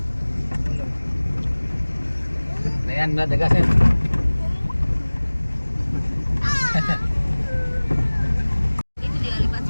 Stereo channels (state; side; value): inverted; both; correlation -1.00